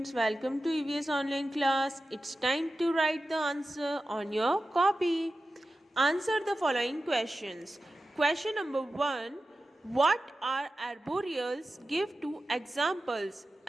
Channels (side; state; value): both; normal; correlation 0.93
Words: Welcome to EVS online class. It's time to write the answer on your copy. Answer the following questions. Question number 1. What are arboreals? Give two examples.